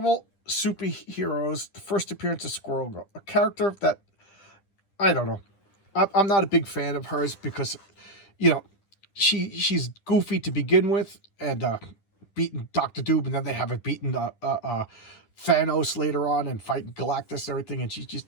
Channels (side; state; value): right; late; 10 ms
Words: Superheroes, the first appearance of Squirrel Girl, a character that, I don't know. I'm not a big fan of hers because, you know, she's goofy to begin with, and beaten Dr. Doom, and then they haven't beaten Thanos later on and fighting Galactus and everything, and she's just,